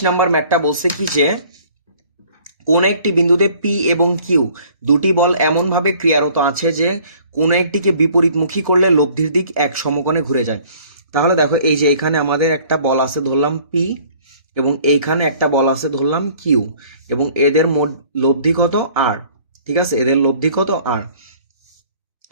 নাম্বার ম্যাথটা বলছে কি যে কোন একটি বিন্দুতে পি এবং কিউ দুটি বল এমনভাবে ক্রিয়ারত আছে যে কোন একটিকে বিপরীতমুখী করলে লব্ধির দিক এক সমকোণে ঘুরে যায়। তাহলে দেখো, এই যে এখানে আমাদের একটা বল আছে ধরলাম পি, এবং এইখানে একটা বল আছে ধরলাম কিউ, এবং এদের মোট লব্ধি কত আর। ঠিক আছে, এদের লব্ধি কত আর।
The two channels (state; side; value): inverted; both; correlation -0.54